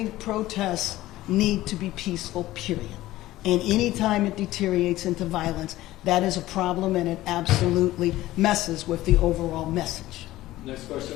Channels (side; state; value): right; quieter; 16.2 dB